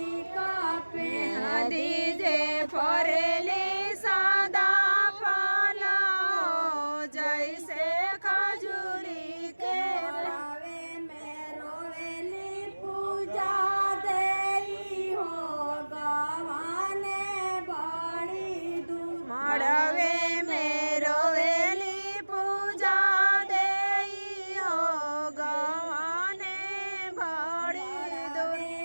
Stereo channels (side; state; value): both; inverted; correlation -1.00